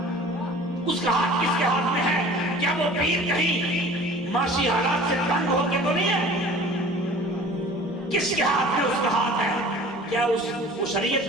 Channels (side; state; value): both; normal; correlation 0.45